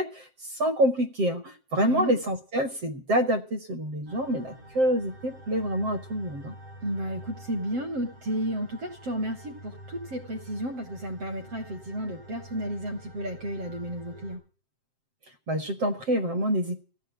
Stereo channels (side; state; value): left; late; 7.6 ms